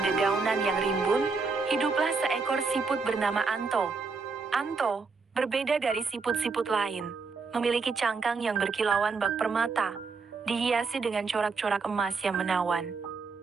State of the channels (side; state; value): left; quieter; 4.6 dB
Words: dedaunan yang rimbun, hiduplah seekor siput bernama Anto. Anto, berbeda dari siput-siput lain, memiliki cangkang yang berkilauan bak permata, dihiasi dengan corak-corak emas yang menawan.